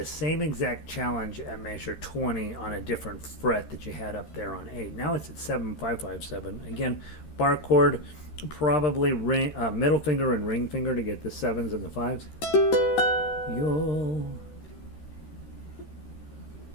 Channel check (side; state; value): right; late; 13 ms